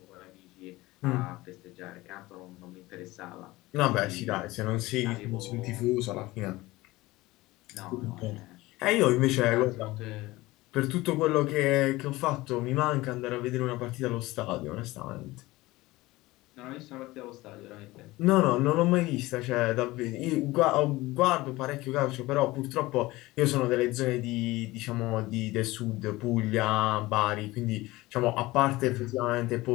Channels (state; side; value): quieter; right; 19.5 dB